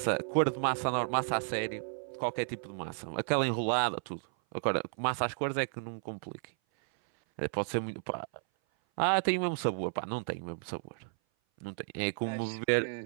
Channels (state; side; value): silent; left; 56 dB below the other